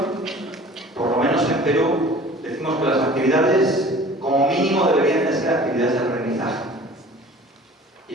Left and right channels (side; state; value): both; normal; correlation 0.45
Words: por lo menos en Perú, decimos que las actividades como mínimo deberían de ser actividades de aprendizaje. Y